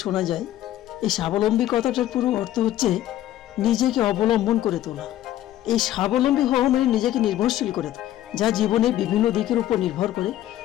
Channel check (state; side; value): quieter; right; 13.2 dB